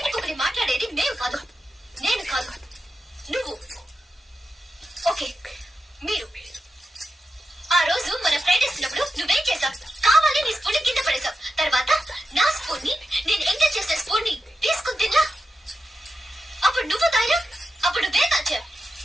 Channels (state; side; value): normal; both; correlation 0.89